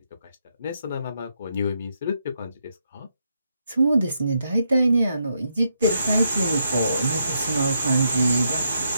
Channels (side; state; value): both; inverted; correlation -0.80